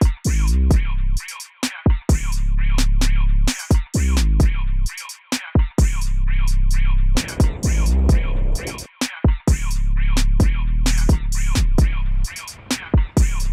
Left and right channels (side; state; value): both; identical; correlation 1.00